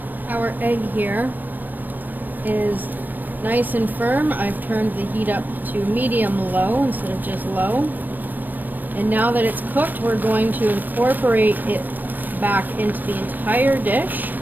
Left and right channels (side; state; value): left; late; 0.086 ms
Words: our egg here is nice and firm. I've turned the heat up to medium-low instead of just low. And now that it's cooked, we're going to incorporate it back into the entire dish.